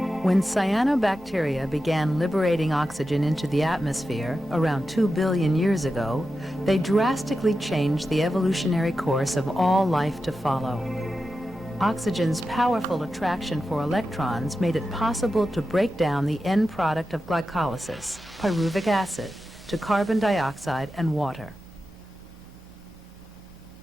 When cyanobacteria began liberating oxygen into the atmosphere around 2 billion years ago, they drastically changed the evolutionary course of all life to follow. Oxygen's powerful attraction for electrons made it possible to break down the end product of glycolysis, pyruvic acid, to carbon dioxide and water.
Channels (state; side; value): normal; both; correlation 0.91